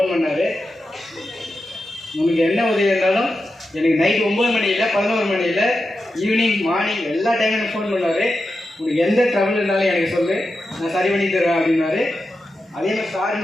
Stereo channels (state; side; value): normal; both; correlation 0.90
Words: பண்ணார். உங்களுக்கு என்ன உதவி இருந்தாலும் எனக்கு நைட்டு 9 மணியில் 11 மணியில் ஈவினிங் மார்னிங் எல்லா டைமும் எனக்கு ஃபோன் பண்ணார். உங்களுக்கு எந்த ட்ரபிள் இருந்தாலும் எனக்கு சொல்லு, நான் சரி பண்ணி தருவேன் அப்படின்னாரு. அதே மாதிரி சார்